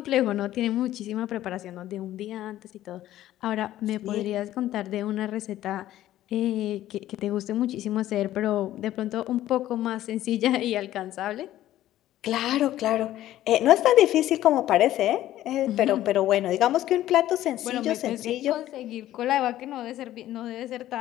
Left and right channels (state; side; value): quieter; right; 13.7 dB